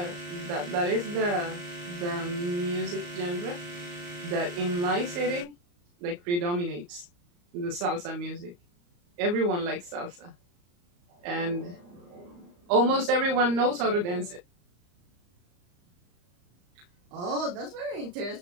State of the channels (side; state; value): left; late; 34 ms